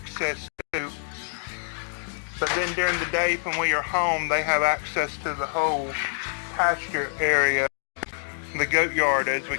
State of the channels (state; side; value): silent; right; digital silence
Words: to. But then during the day when we are home, they have access to the whole pasture area, the goat yard as we